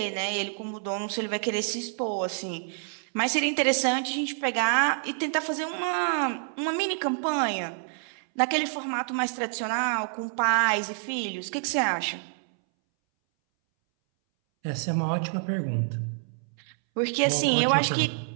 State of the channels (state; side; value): silent; left; 60 dB below the other